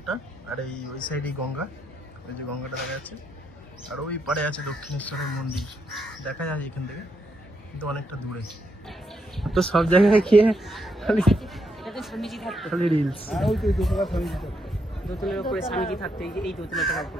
আর এই ওই সাইডে গঙ্গা, ওই যে গঙ্গাটা দেখা যাচ্ছে, আর ওই পাড়ে আছে দক্ষিণেশ্বরের মন্দির, দেখা যায় এখান থেকে, কিন্তু অনেকটা দূরে। তো সব জায়গায় গিয়ে খালি স্বামীজি থাকতো, খালি রিলস। দোতলার উপরে স্বামীজি থাকতো, এই দোতলাটার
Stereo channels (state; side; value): normal; both; correlation 0.79